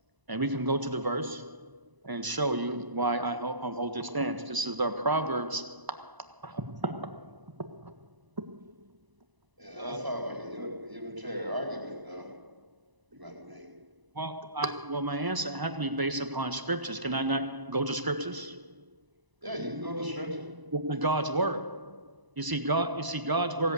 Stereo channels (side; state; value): left; late; 1.0 ms